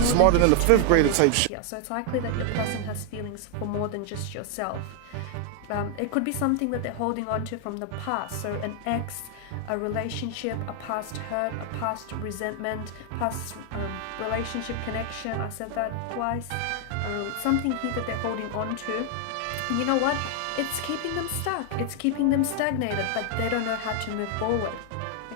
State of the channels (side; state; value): both; different; correlation 0.00